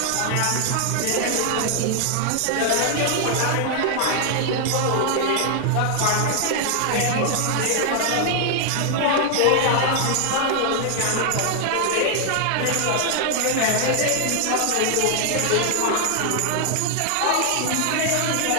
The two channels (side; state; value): both; different; correlation 0.00